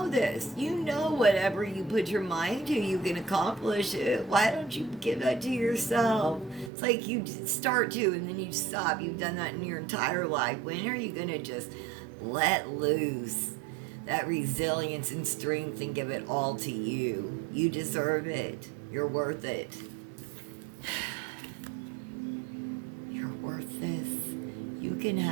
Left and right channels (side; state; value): left; drops out; at 6.7 s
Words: this. You know whatever you put your mind to, you can accomplish it. Why don't you give that to yourself? It's like you start to and then you stop. You've done that in your entire life. When are you going to just let loose that resilience and strength and give it all to you? You deserve it. You're worth it. You're worth this. You can